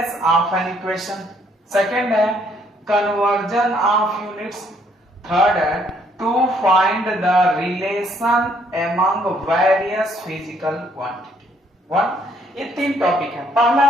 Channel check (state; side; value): normal; both; correlation 0.67